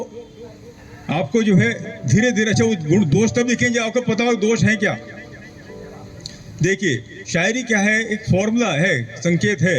आपको जो है धीरे धीरे, अच्छा वो गुण दोष तब लिखेंगे आपको पता हो दोष है क्या। देखिए, शायरी क्या है, एक फॉर्मूला है, संकेत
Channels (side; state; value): both; identical; correlation 1.00